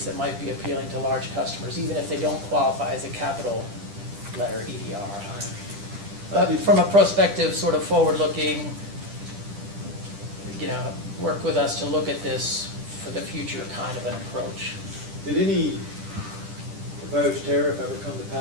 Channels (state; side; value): late; left; 10 ms